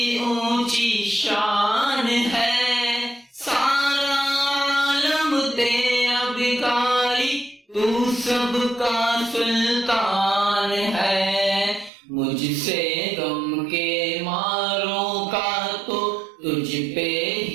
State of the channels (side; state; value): left; drops out; at 11.9 s